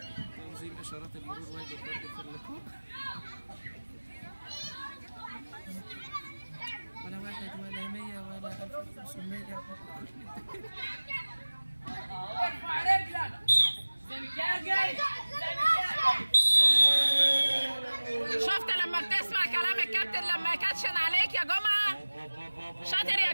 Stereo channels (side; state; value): both; inverted; correlation -1.00